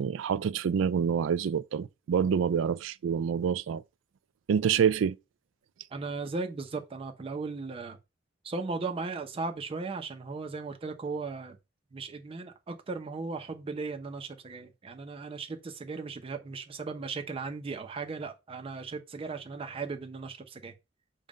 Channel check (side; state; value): left; quieter; 6.1 dB